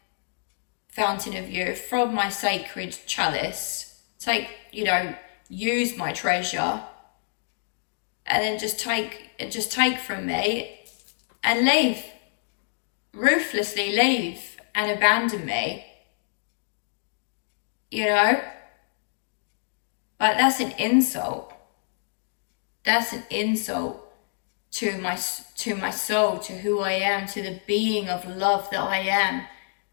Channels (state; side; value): silent; right; digital silence